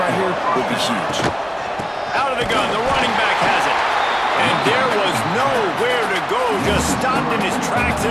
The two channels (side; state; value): both; identical; correlation 1.00